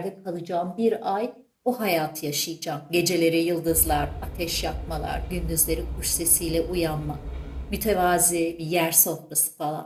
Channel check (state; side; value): identical; both; correlation 1.00